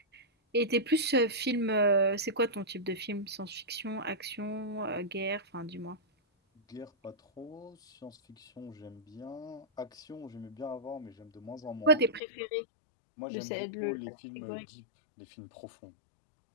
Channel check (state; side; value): drops out; right; at 12.2 s